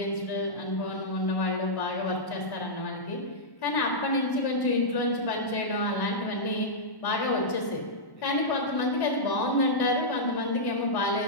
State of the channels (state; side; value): late; right; 1.1 ms